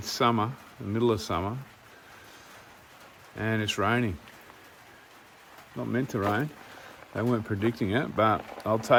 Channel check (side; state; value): both; identical; correlation 1.00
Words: summer, the middle of summer, and it's raining. Not meant to rain. They weren't predicting it, but I'll